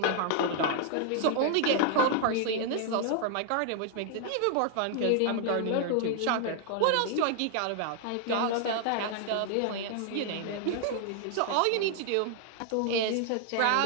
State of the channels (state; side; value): different; both; correlation 0.00